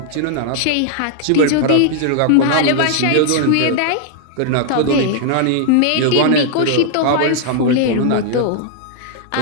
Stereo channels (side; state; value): both; different; correlation 0.00